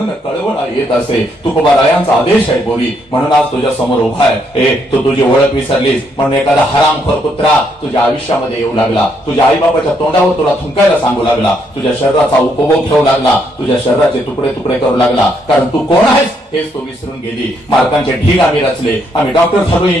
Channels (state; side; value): normal; both; correlation 0.74